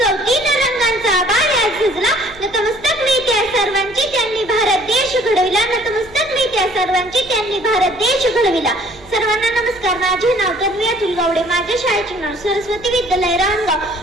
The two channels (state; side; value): noise; right; hum, 23 dB below the sound